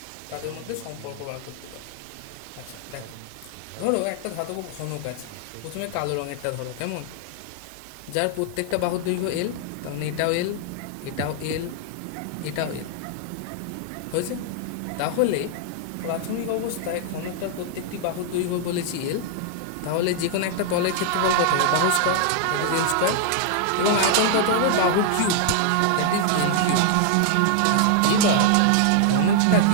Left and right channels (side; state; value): both; different; correlation 0.00